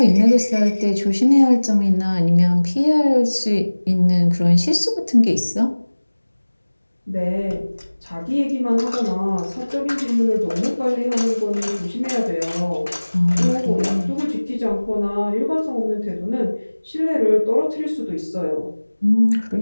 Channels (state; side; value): inverted; both; correlation -1.00